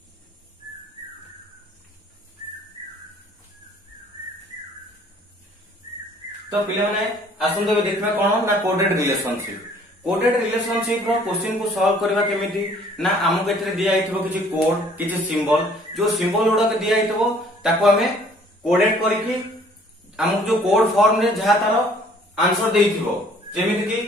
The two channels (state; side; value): normal; both; correlation 0.57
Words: तो पिले माने आसंते देखबा कोन ना कोडेड रिलेशनशिप। कोडेड रिलेशनशिप रो क्वेश्चन को सॉल्व करबा केमिति ना हमको एथरे दिया आइथबो किछि कोड किछि सिंबल, जो सिंबल उडा के दिया आइथबो ताको हमें कोडेड करिकि हमको जो कोड फॉर्म रे जहा तारो आंसर देइथिबो, जेमिति कि